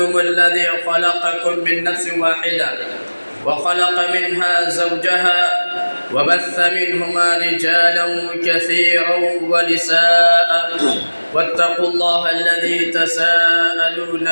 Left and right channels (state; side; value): inverted; both; correlation -1.00